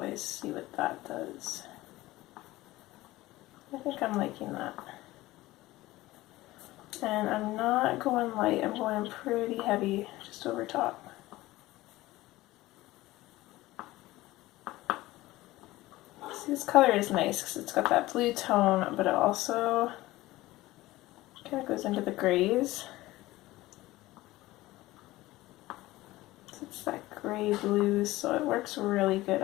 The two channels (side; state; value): right; quieter; 18.0 dB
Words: see what that does. I think I'm liking that. And I'm not going light, I'm going pretty heavy just over top. See, this color is nice because it's got that blue tone, but it also kind of goes into the grays. So it's that gray blue, so it works really good